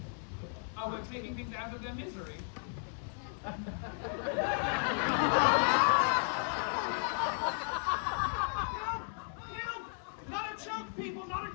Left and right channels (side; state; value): right; silent; 55 dB below the other